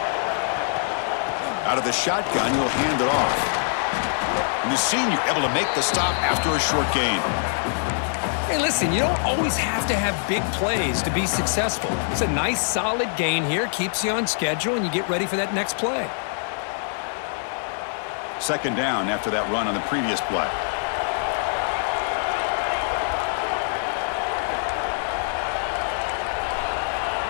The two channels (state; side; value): silent; right; 56 dB below the other